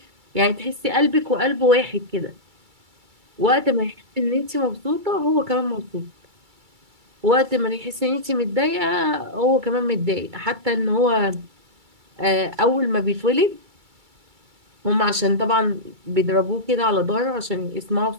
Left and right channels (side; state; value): left; late; 2.3 ms